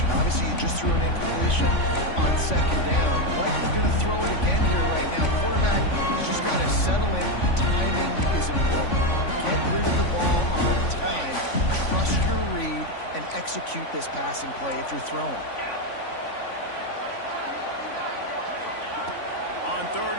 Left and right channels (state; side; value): late; right; 3.5 ms